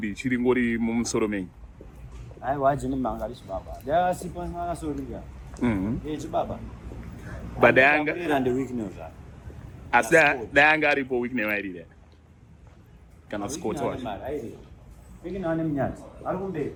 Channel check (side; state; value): both; identical; correlation 1.00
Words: chiri ngori mumusoro menyu. Aye, why Jinimbi mangari chibaba. Ndasipo nganasorika. Chibaba. But danga and the weakness. asi danga aripo week newairira kana Scott wacho Ikina nemnyati. Arikumbe.